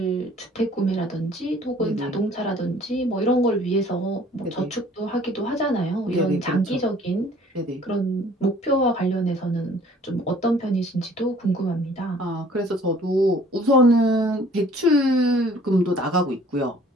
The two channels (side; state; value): both; normal; correlation 0.54